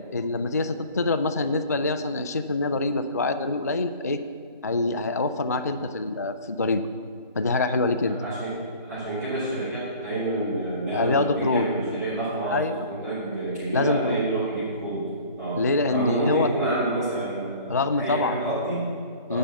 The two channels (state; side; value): inverted; both; correlation -0.46